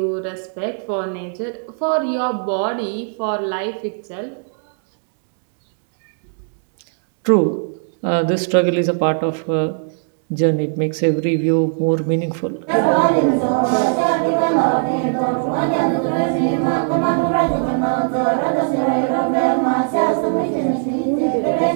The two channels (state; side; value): silent; left; digital silence